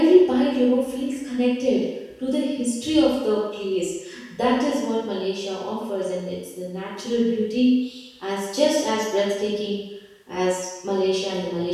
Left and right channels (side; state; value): both; identical; correlation 1.00